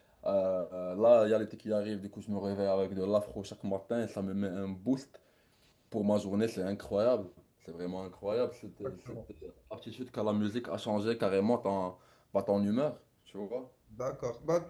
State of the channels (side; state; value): both; identical; correlation 1.00